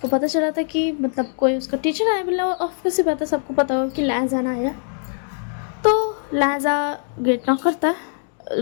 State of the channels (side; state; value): right; silent; 57 dB below the other